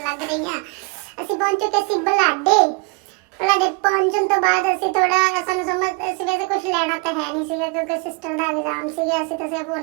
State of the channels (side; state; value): left; quieter; 30.0 dB